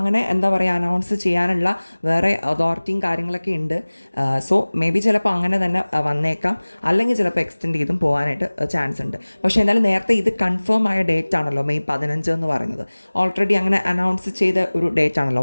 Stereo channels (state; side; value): inverted; both; correlation -1.00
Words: അനൗൺസ് ചെയ്യാനുള്ള വേറെ അതോറിറ്റിയും കാര്യങ്ങളൊക്കെ ഉണ്ട്. സോ മേ ബി ചിലപ്പോൾ അങ്ങനെ തന്നെ വന്നേക്കാം, അല്ലെങ്കിൽ ചിലപ്പോൾ എക്സ്റ്റെൻഡ് ചെയ്തും പോകാനായിട്ട് ചാൻസ് ഉണ്ട്. പക്ഷേ എന്തായാലും നേരത്തെ ഇത് കൺഫേം ആയ ഡേറ്റ് ആണല്ലോ മെയ് 15 എന്ന് പറയുന്നത്. ഓൾറെഡി അങ്ങനെ അനൗൺസ് ചെയ്ത ഒരു ഡേറ്റ് ആണല്ലോ